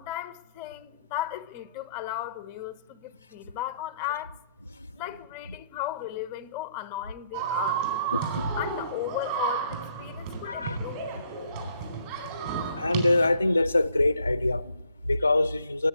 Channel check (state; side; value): inverted; both; correlation -0.67